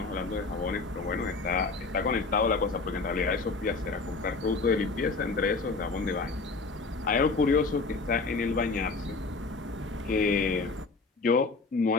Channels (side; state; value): right; quieter; 3.9 dB